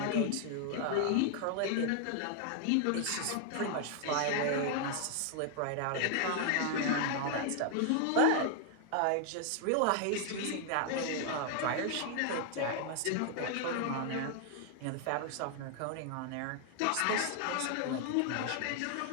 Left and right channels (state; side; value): different; both; correlation 0.00